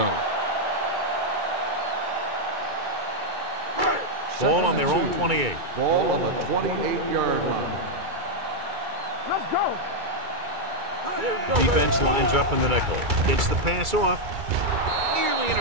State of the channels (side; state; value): left; late; 2.3 ms